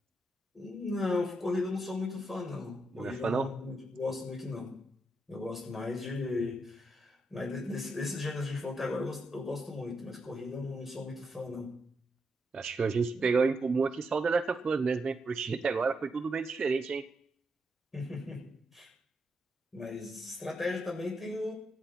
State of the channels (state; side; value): normal; both; correlation 0.82